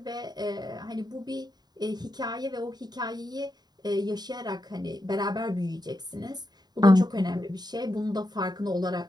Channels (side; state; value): left; late; 0.20 ms